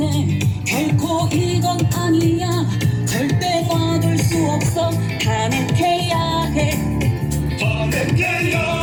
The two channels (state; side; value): identical; both; correlation 1.00